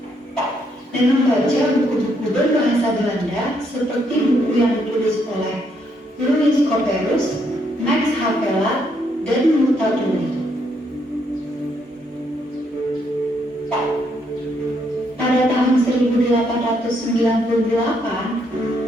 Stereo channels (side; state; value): both; normal; correlation 0.74